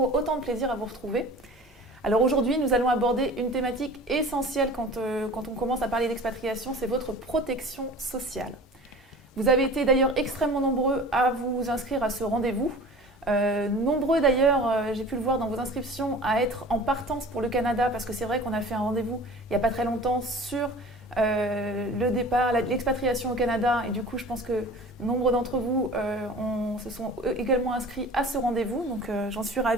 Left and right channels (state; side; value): normal; both; correlation 0.41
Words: autant de plaisir à vous retrouver. Alors aujourd'hui, nous allons aborder une thématique essentielle quand on commence à parler d'expatriation, c'est votre protection sociale. Vous avez été d'ailleurs extrêmement nombreux à vous inscrire à ce rendez-vous. Nombreux d'ailleurs, j'ai pu le voir dans vos inscriptions, à être en partance pour le Canada parce que c'est vrai qu'on a fait un rendez-vous il n'y a pas très longtemps sur le départ, l'expatriation au Canada et du coup je pense que nombre d'entre vous se sont également inscrits à ce rendez-vous, donc j'en suis